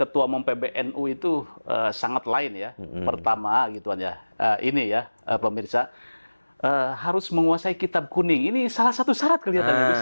umum PBNU itu sangat lain ya. Pertama gituan ya, ini ya pemirsa. Harus menguasai kitab kuning. Ini salah satu syarat kelihatannya Gus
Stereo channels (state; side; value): inverted; both; correlation -1.00